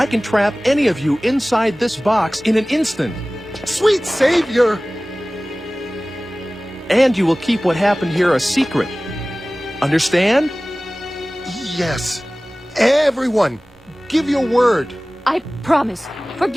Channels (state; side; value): normal; both; correlation 0.98